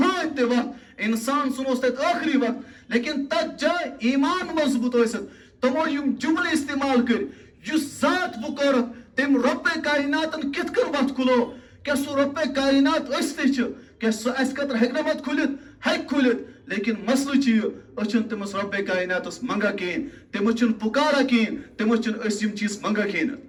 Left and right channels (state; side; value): identical; both; correlation 1.00